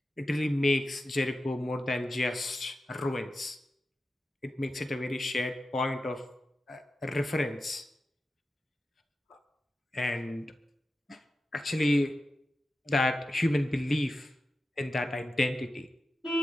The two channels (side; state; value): both; normal; correlation 0.92